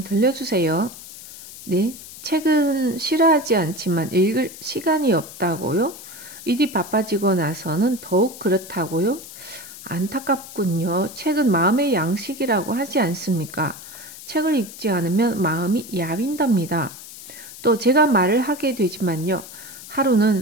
들려주세요. 네, 책은 싫어하지 않지만 읽을 시간이 없다고요? 일이 바빠지고 나서는 더욱 그렇다고요? 안타깝군요. 책은 마음의 양식이라고 하지 않습니까? 책을 읽지 않으면 마음이 야윈답니다. 또 제가 말을 하게 되지만요.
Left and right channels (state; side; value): noise; left; hiss, 15 dB below the sound